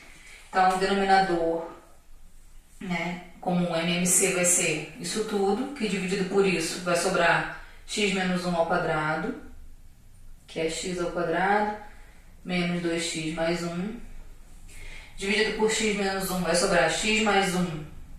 Então, o denominador, né, como MMC vai ser isso tudo, que dividido por isso vai sobrar x menos 1 ao quadrado, que é x ao quadrado, menos 2x mais 1. Dividido por x menos 1 vai sobrar x mais 1,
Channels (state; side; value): identical; both; correlation 1.00